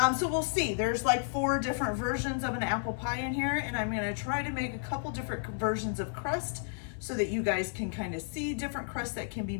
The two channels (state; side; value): silent; right; 56 dB below the other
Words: So we'll see. There's like 4 different versions of an apple pie in here, and I'm going to try to make a couple different versions of crust so that you guys can kind of see different crusts that can be